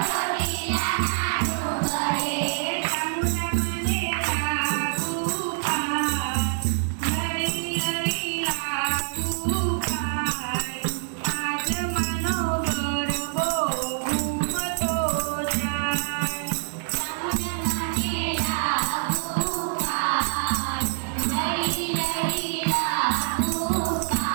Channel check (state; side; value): silent; left; 61 dB below the other